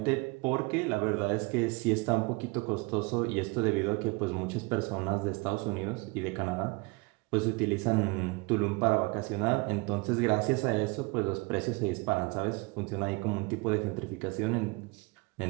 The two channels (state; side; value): quieter; left; 27.4 dB